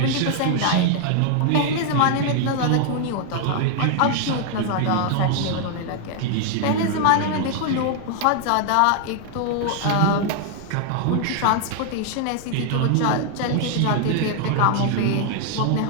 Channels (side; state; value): both; different; correlation 0.00